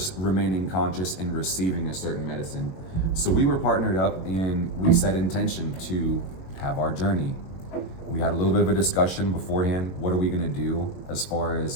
remaining conscious and receiving a certain medicine. So we were partnered up and we set intention to have our journey. We had a little bit of a discussion beforehand. What are we gonna do as far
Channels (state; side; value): late; right; 22 ms